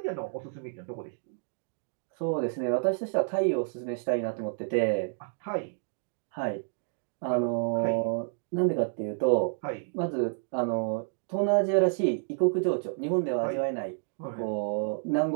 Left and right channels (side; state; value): left; silent; digital silence